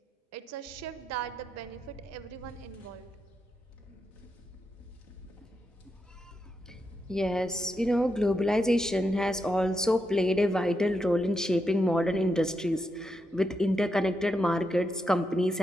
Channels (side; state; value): both; normal; correlation 0.84